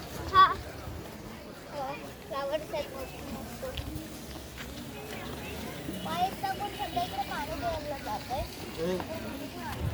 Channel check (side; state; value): both; identical; correlation 1.00